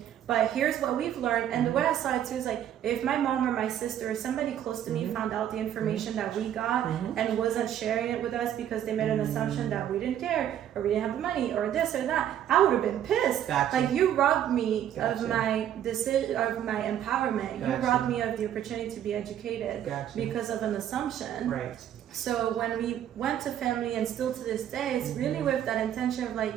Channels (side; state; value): left; quieter; 10.6 dB